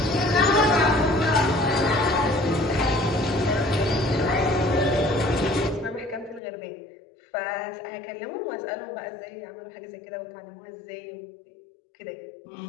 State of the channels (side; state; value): right; drops out; at 6.4 s